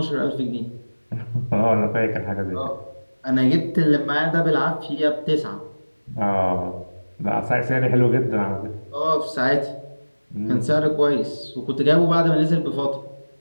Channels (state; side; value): inverted; both; correlation -1.00